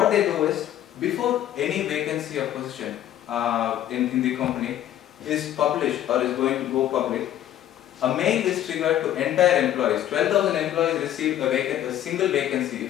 they do is, before any vacancy or position in the company is published or is going to go public, a mail is triggered to entire employees. 12,000 employees receive a single vacancy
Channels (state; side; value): quieter; right; 11.8 dB